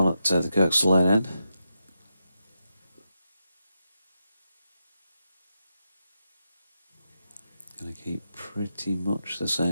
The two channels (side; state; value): both; inverted; correlation -0.87